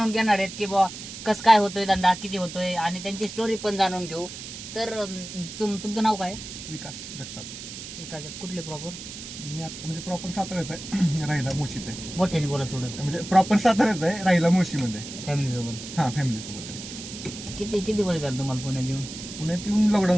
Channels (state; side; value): noise; right; hiss, 11 dB below the sound